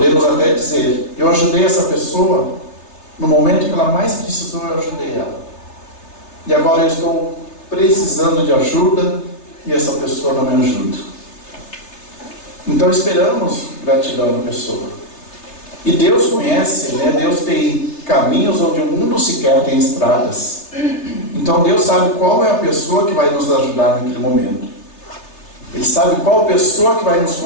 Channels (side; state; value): right; late; 3.3 ms